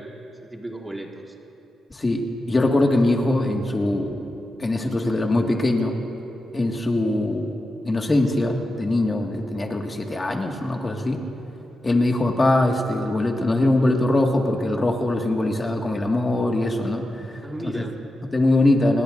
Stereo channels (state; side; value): normal; both; correlation 0.90